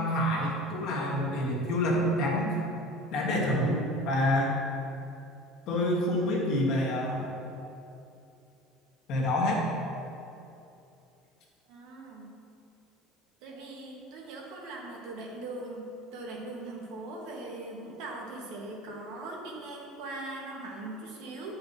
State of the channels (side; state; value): both; normal; correlation 0.38